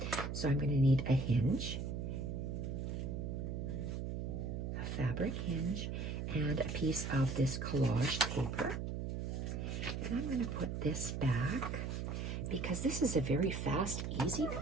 So I'm going to need a hinge, a fabric hinge, and a piece of this collage paper. And I'm going to put this back because this is a very fast, easy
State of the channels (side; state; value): right; noise; hum, 3 dB below the sound